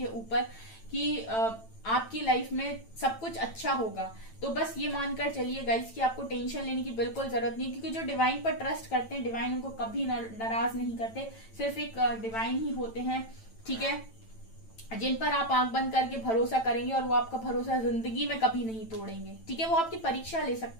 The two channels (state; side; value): late; right; 9.0 ms